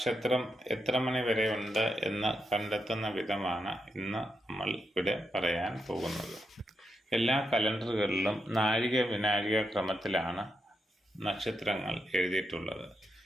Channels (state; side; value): normal; both; correlation 0.83